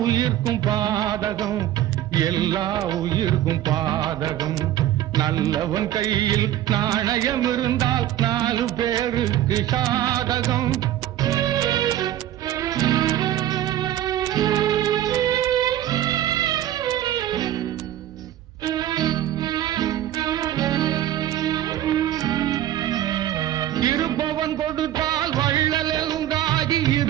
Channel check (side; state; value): left; quieter; 12.4 dB